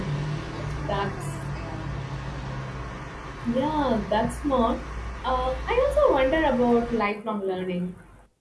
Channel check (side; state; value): both; identical; correlation 1.00